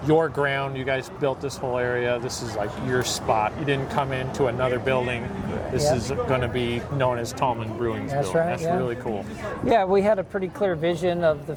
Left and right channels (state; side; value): identical; both; correlation 1.00